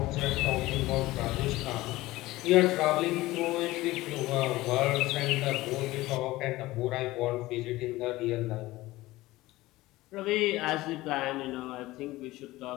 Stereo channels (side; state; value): right; quieter; 18.3 dB